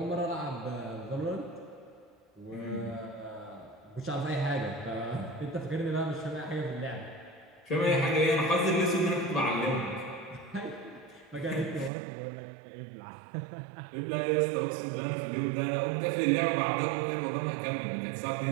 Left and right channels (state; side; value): drops out; left; at 11.9 s